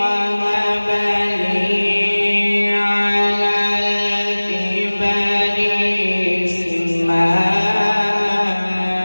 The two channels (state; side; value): inverted; both; correlation -1.00